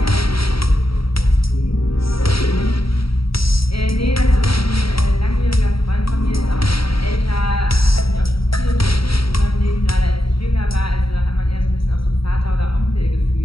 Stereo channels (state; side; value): late; right; 0.75 ms